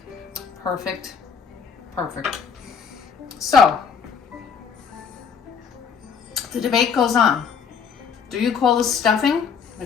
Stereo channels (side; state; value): right; quieter; 6.4 dB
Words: Perfect. Perfect. So, the debate goes on. Do you call this stuffing